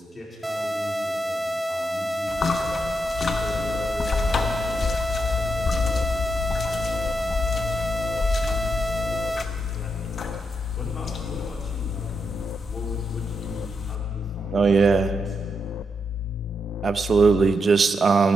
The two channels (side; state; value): both; normal; correlation 0.82